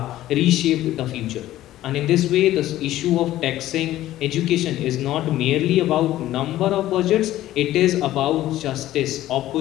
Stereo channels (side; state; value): right; quieter; 14.4 dB